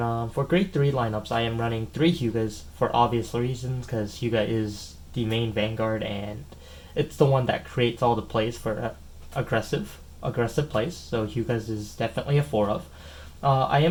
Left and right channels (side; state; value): both; identical; correlation 1.00